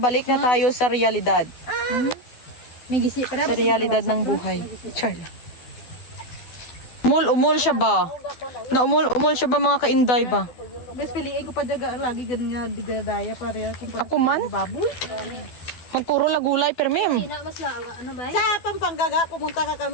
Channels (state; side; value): late; right; 12 ms